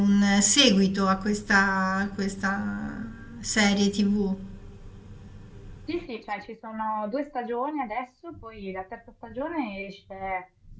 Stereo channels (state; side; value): identical; both; correlation 1.00